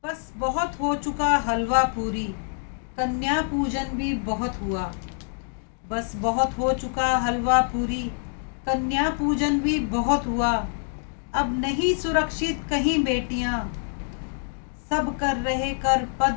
बस बहुत हो चुका हलवा पूरी, कन्या पूजन भी बहुत हुआ। बस बहुत हो चुका हलवा पूरी, कन्या पूजन भी बहुत हुआ। अब नहीं सुरक्षित कहीं बेटियाँ, सब कर रहे कर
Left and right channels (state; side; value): silent; right; 61 dB below the other